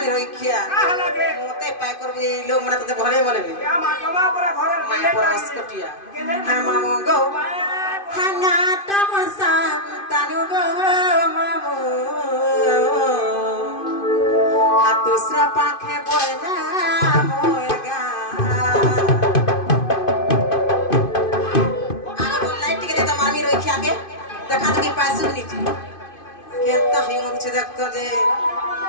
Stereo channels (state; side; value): late; right; 2.5 ms